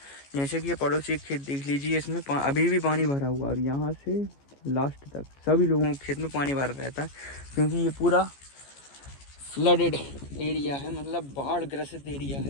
जैसे कि ये पड़ोसी खेत देख लीजिए, इसमें अभी भी पानी भरा हुआ, और यहाँ से लास्ट तक सभी लोगों के खेत में पानी भरा रहता है क्योंकि ये पूरा फ्लडेड एरिया है, मतलब बाढ़ ग्रसित एरिया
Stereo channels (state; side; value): late; right; 14 ms